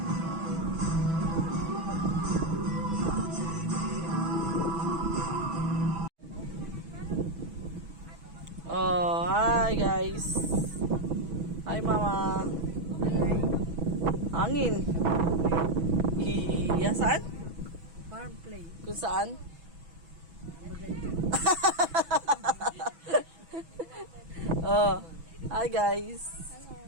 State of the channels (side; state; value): left; late; 6.1 ms